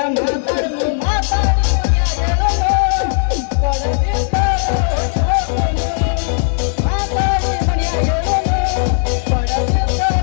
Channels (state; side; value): silent; right; digital silence